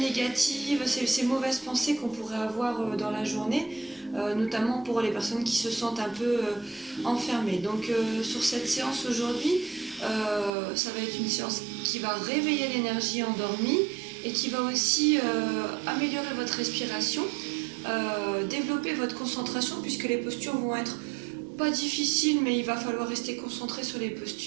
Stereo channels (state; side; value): drops out; left; at 10.5 s